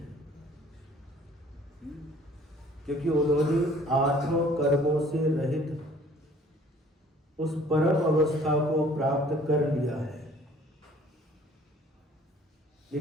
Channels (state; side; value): normal; both; correlation 0.55